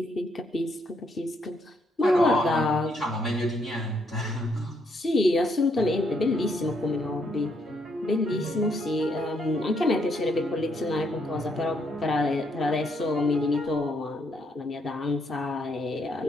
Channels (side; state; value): both; normal; correlation 0.74